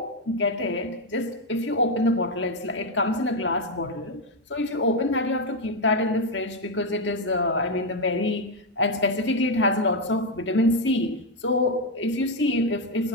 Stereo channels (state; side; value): normal; both; correlation 0.05